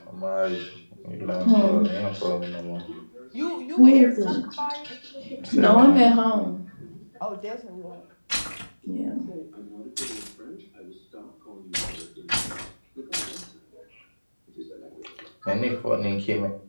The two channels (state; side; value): inverted; both; correlation -1.00